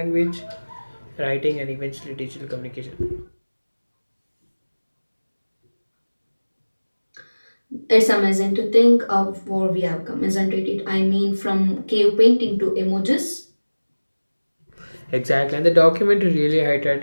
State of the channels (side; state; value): both; inverted; correlation -1.00